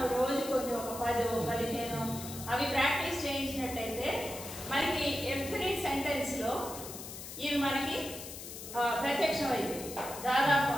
రోజు కొన్ని ఒక 10-15 అవి ప్రాక్టీస్ చేయించినట్టయితే మనకి ఎవ్రీ సెంటెన్స్ లో ఇవి మనకి ప్రత్యక్షం అయింది. దాదాపు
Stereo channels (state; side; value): noise; left; hiss, 11 dB below the sound